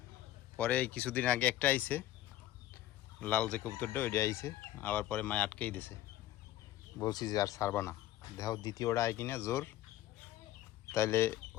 পরে কিছুদিন আগে একটা আইছে, লাল যে কবুতরটা ওইটা আইছে, আবার পরে মায় আটকেই দিছে। বলছি যে আর ছাড়বা না, দেখো দ্বিতীয়টা আয় কিনা জোর, তাইলে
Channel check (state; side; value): quieter; right; 14.2 dB